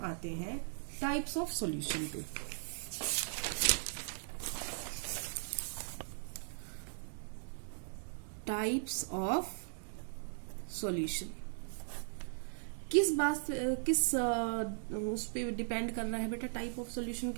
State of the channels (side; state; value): left; silent; 52 dB below the other